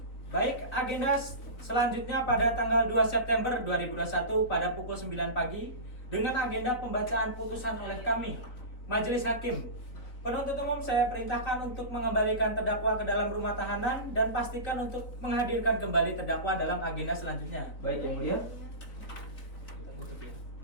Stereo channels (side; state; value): right; late; 3.7 ms